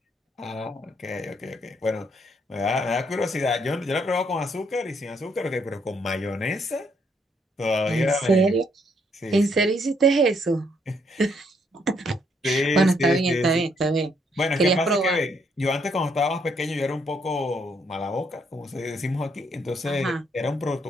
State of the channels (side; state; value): both; normal; correlation 0.72